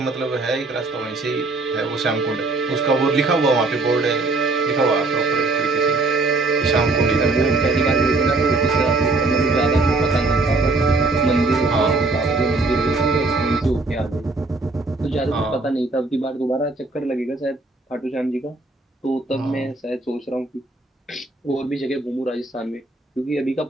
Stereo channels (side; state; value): left; quieter; 3.3 dB